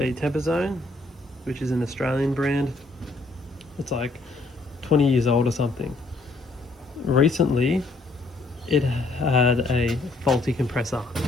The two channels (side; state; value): right; quieter; 3.1 dB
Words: Temper Zone, which is an Australian brand. It's like 20 years old or something. Recently, it had a faulty compressor